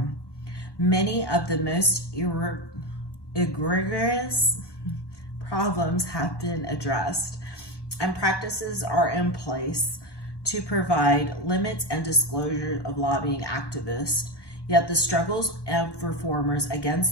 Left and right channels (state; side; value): late; right; 1.1 ms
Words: Many of the most egregious problems have been addressed, and practices are in place to provide limits and disclosure of lobbying activists. Yet the struggles of reformers